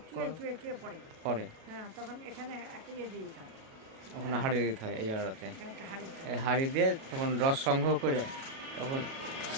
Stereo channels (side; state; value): left; late; 37 ms